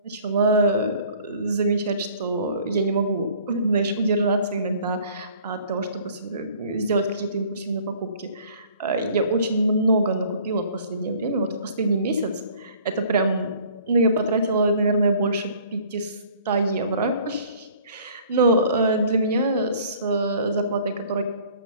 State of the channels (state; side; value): inverted; both; correlation -0.53